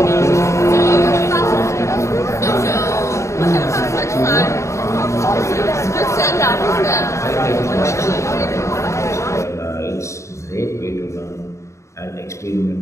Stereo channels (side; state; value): right; late; 0.14 ms